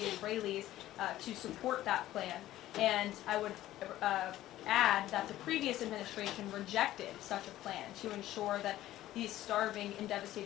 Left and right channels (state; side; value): quieter; right; 14.4 dB